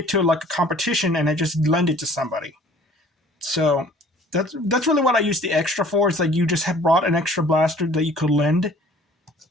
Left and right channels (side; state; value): both; normal; correlation 0.52